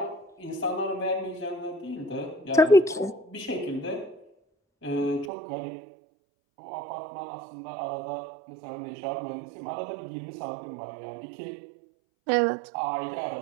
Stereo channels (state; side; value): drops out; left; at 5.3 s